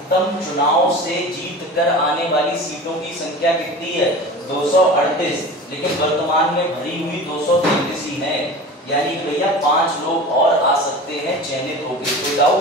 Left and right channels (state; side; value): normal; both; correlation 0.35